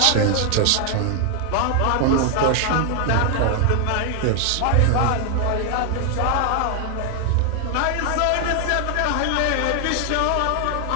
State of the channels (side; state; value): both; different; correlation 0.00